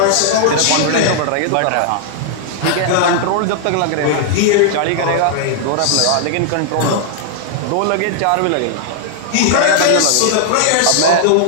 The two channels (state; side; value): different; both; correlation -0.01